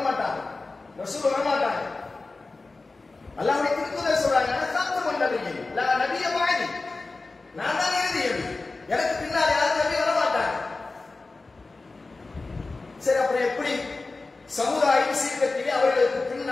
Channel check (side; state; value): right; quieter; 3.6 dB